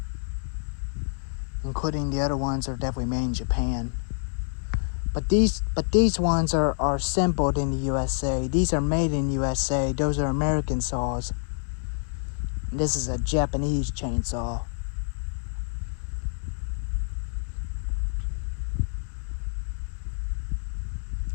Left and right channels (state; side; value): silent; right; digital silence